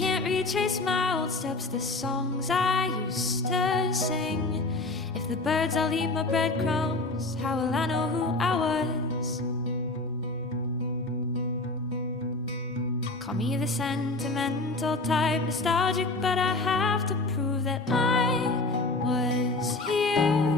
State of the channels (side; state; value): right; quieter; 3.1 dB